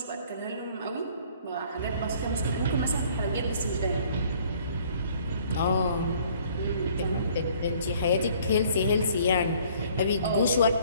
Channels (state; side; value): inverted; both; correlation -0.57